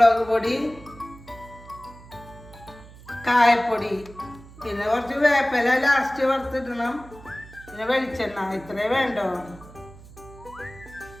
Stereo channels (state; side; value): noise; right; hum, 19 dB below the sound